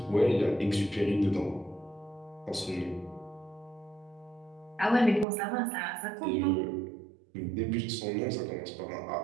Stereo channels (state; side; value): drops out; left; at 5.2 s